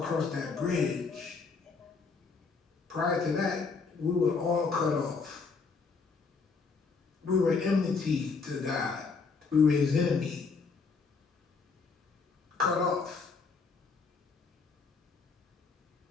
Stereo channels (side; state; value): right; quieter; 4.8 dB